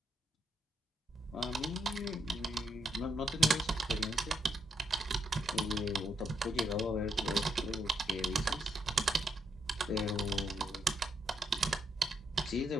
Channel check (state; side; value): normal; both; correlation 0.79